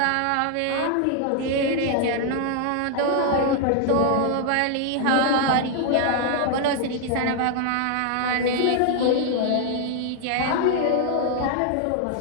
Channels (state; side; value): different; both; correlation 0.00